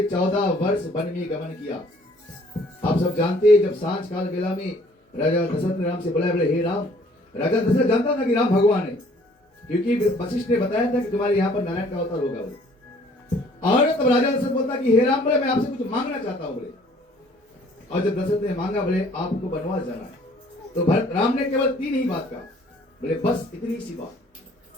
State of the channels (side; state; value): both; normal; correlation 0.58